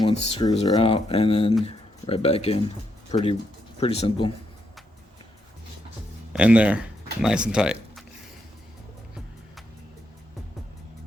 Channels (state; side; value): normal; both; correlation 0.79